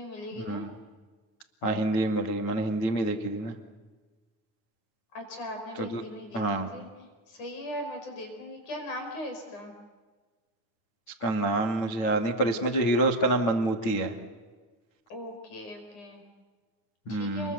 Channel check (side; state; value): right; late; 9.0 ms